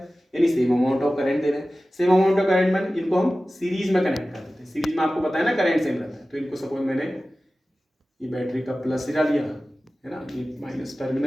यानी सेम अमाउंट ऑफ करंट दे रहे हैं। सेम अमाउंट ऑफ करंट में इनको हम सीरीज में कनेक्ट कर देते हैं। सीरीज में आपको पता है ना करंट सेम रहता है। तो इनको सपोज मैंने ये बैटरी का प्लस सिरा लिया है ना, ये माइनस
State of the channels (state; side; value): normal; both; correlation 0.96